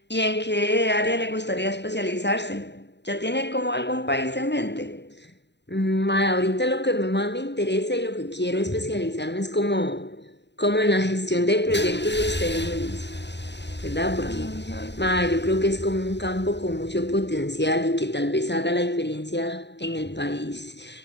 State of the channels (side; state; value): right; late; 0.50 ms